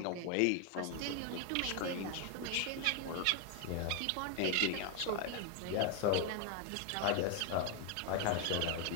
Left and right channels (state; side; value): different; both; correlation 0.01